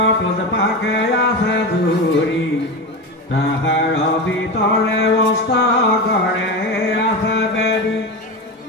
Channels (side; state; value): both; normal; correlation 0.21